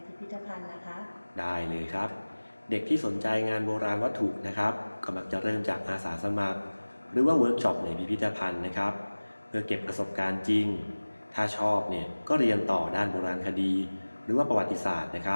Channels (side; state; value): both; inverted; correlation -1.00